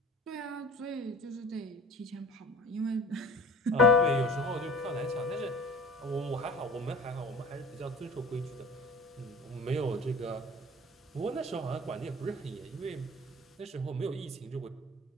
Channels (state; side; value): normal; both; correlation 0.41